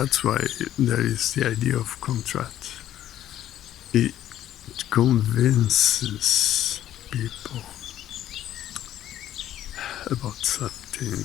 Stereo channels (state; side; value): quieter; right; 12.2 dB